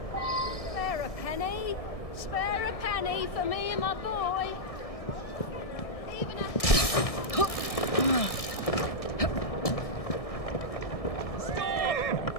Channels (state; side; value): late; right; 1.6 ms